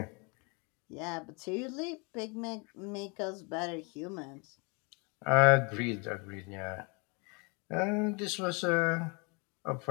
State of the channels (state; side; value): quieter; right; 31.6 dB